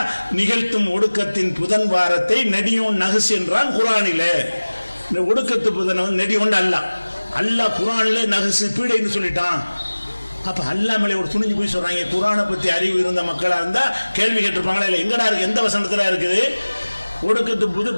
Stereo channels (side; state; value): both; inverted; correlation -1.00